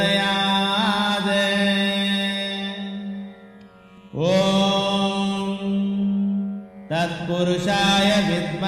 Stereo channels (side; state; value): both; identical; correlation 1.00